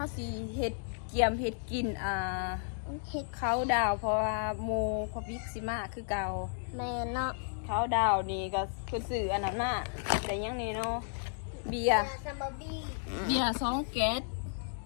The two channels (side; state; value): right; silent; digital silence